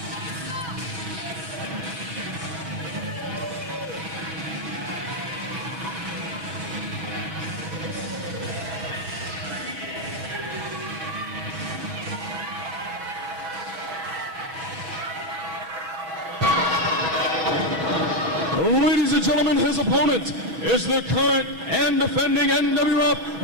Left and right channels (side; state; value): left; late; 6.1 ms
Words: Ladies and gentlemen, his opponent is the current and defending